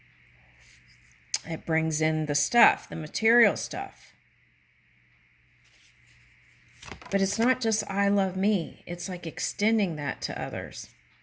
It brings in the stuff, the material stuff. But it's not just I love me. It's like extending that to others.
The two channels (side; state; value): both; identical; correlation 1.00